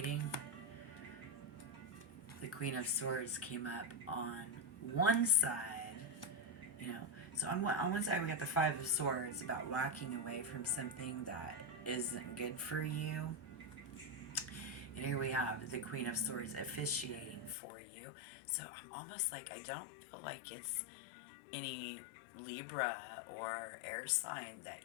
the Queen of Swords came up on one side, you know. So on one side we got the Five of Swords about walking away from something that isn't good for you. And here we have the Queen of Swords officiating for you. So I'm almost like, I don't feel like it's any Libra or air sign that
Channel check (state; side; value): drops out; right; at 17.6 s